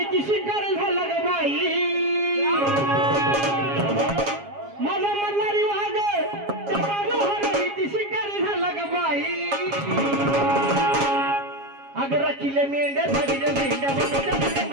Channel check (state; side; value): late; left; 7.3 ms